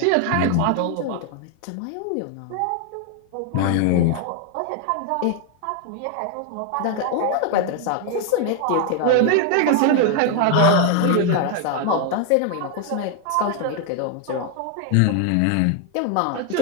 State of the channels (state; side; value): different; both; correlation 0.01